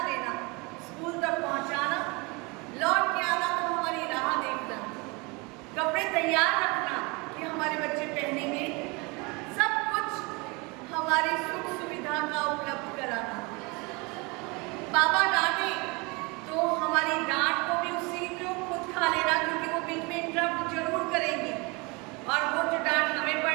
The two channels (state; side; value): quieter; left; 27.6 dB